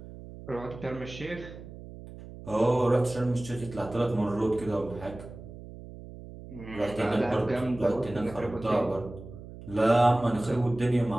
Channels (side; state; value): right; noise; hum, 14 dB below the sound